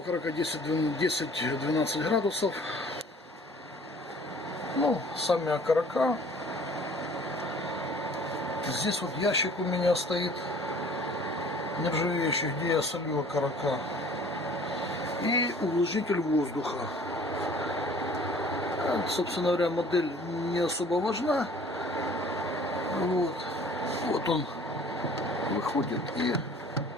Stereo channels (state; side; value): normal; both; correlation 0.51